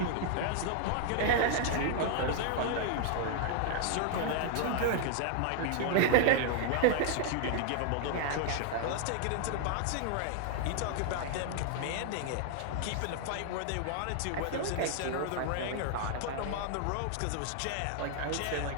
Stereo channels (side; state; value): both; different; correlation 0.00